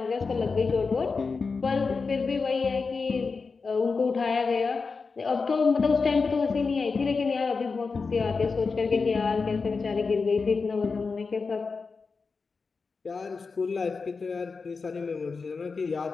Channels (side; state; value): right; quieter; 4.6 dB